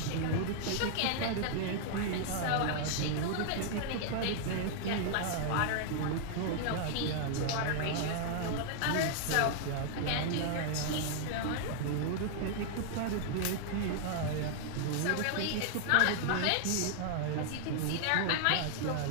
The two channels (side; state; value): both; different; correlation 0.00